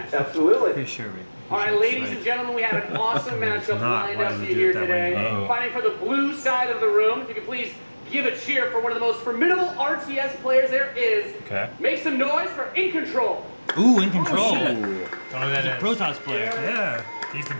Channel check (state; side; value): inverted; both; correlation -1.00